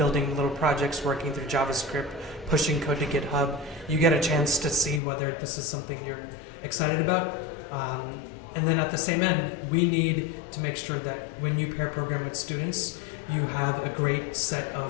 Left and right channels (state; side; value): drops out; right; at 5.0 s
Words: little projects, working through JavaScript, pushing code to GitHub, you get a chance to see whether this is something you're excited about. And then at the same end, we need to make sure that when you pair program with students, you have a great set